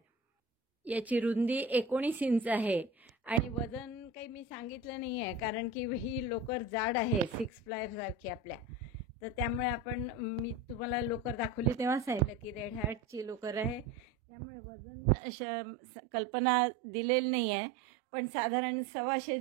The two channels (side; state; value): left; drops out; at 14.1 s